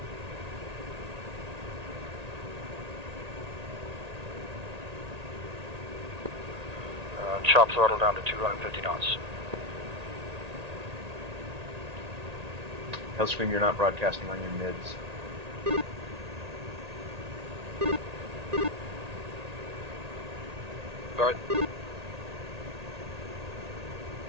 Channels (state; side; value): late; left; 1.8 ms